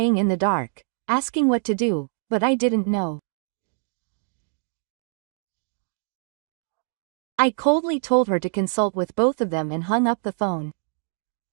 in the dark, asking what to do, but I didn't know. I coldly told her to consult with both of them and hung up the phone.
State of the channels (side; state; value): left; silent; 62 dB below the other